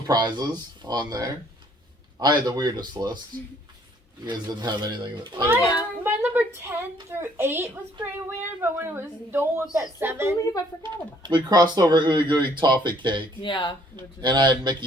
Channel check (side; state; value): both; normal; correlation 0.62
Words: on there. I had the weirdest list. You guys didn't have anything that. My number 10 through 8 was pretty weird, but when it was Dole was at 7. I believe I forgot about it. We crossed over Ooey Gooey Toffee Cake, Yeah. and I had